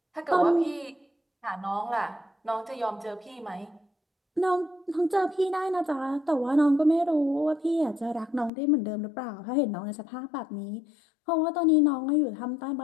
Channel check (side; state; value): right; drops out; at 8.5 s